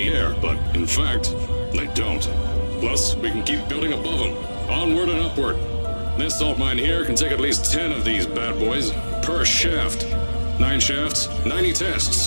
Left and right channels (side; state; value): both; inverted; correlation -1.00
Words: air, but in fact, they don't. Plus, we can keep building above them, onward and upward. This salt mine here can take at least 10 of these bad boys per shaft. 9 shafts, 90